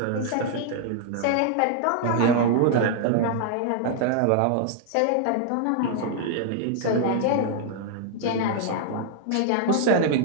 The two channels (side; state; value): both; different; correlation 0.00